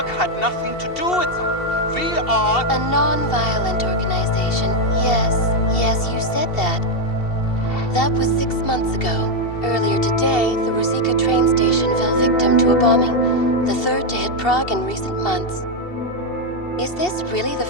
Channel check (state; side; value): late; right; 2.7 ms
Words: had nothing to do with that. We are... A non-violent organization. Yes, you said that. That was 6 months ago. Earlier today, the Ruzicka train station fell victim to a bombing, the third to hit Prague in recent months. Is this really the